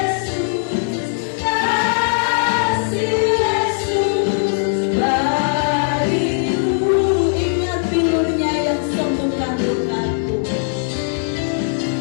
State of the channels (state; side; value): silent; right; digital silence